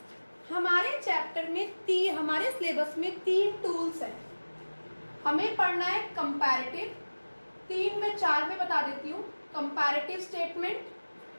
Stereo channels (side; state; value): both; inverted; correlation -1.00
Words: हमारे चैप्टर में हमारे सिलेबस में 3 टूल्स हैं। हमें पढ़ना है कंपैरेटिव, 3 में 4 में बता देती हूँ। कंपैरेटिव स्टेटमेंट,